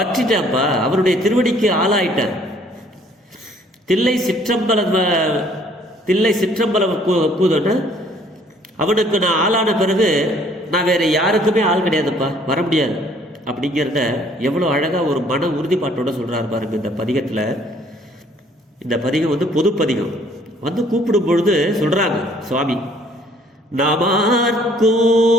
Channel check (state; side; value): normal; both; correlation 0.60